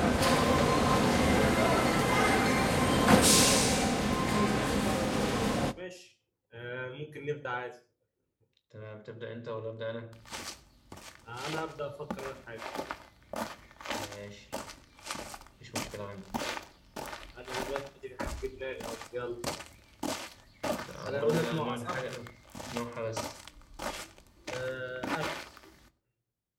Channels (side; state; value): both; identical; correlation 1.00